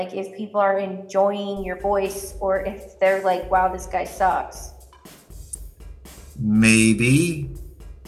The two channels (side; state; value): both; identical; correlation 1.00